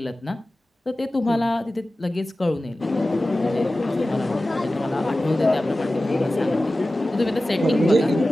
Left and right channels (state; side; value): normal; both; correlation 0.95